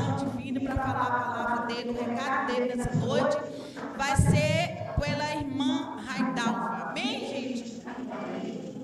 divina para falar a palavra dele, o recado dele nessa noite. Vai ser pela irmã Raidalva. Amém, gente?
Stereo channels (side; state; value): both; identical; correlation 1.00